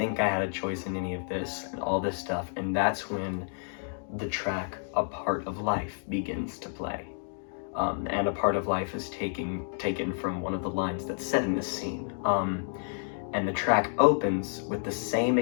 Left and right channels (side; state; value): right; silent; digital silence